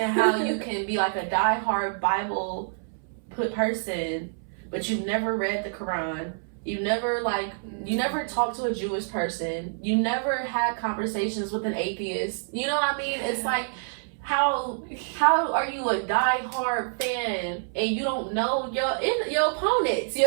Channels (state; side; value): silent; left; 60 dB below the other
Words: how you can be like a diehard Bible person, but you've never read the Quran. You never talked to a Jewish person. You never had conversations with an atheist. You know what I mean? It's like... How are you a die-hard fan and you don't know your opponents,